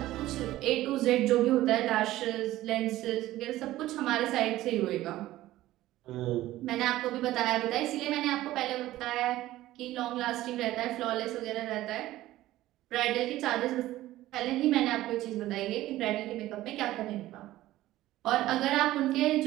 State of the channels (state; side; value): quieter; left; 15.6 dB